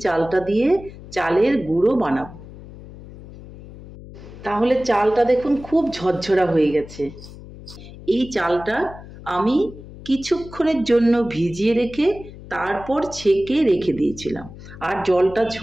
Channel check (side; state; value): left; noise; hum, 16 dB below the sound